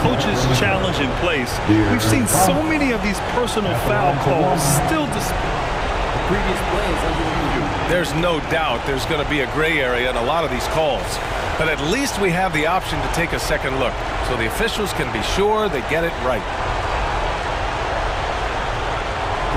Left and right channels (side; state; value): both; identical; correlation 1.00